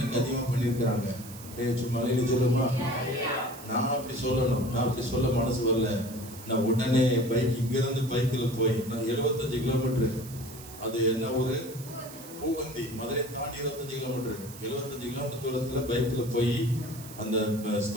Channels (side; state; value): right; noise; hiss, 16 dB below the sound